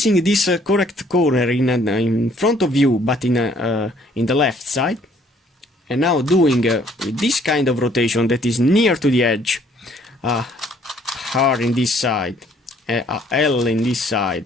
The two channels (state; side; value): normal; both; correlation 0.62